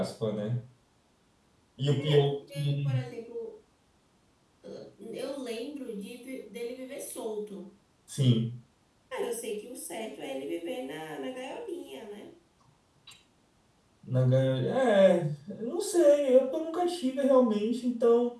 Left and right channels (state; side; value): identical; both; correlation 1.00